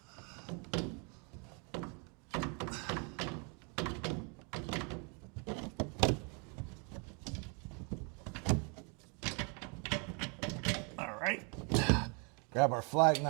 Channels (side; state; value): left; quieter; 34.7 dB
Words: All right, grab our flag